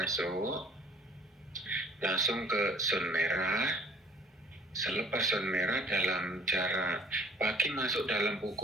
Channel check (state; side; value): normal; both; correlation 0.53